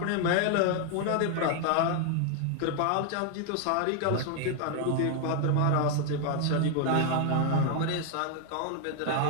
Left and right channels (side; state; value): both; different; correlation 0.00